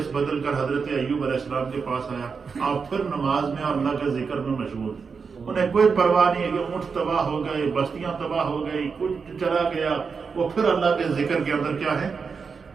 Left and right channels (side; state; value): left; quieter; 5.4 dB